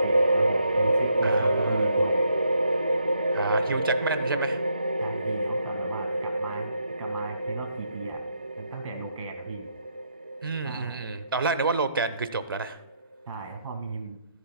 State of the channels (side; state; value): both; inverted; correlation -0.76